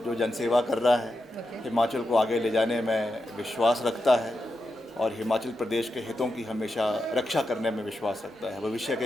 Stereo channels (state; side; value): normal; both; correlation 0.88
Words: जो जनसेवा कर रहा है, हिमाचल को आगे ले जाने में विश्वास रखता है और हिमाचल प्रदेश के हितों की हमेशा रक्षा करने में विश्वास रखता है। भविष्य